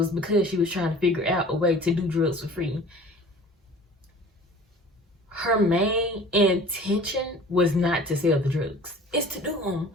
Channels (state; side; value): normal; both; correlation 0.45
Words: because she was trying to figure out a way to do drugs for free. Her main intention was not to sell the drugs. It's to do them.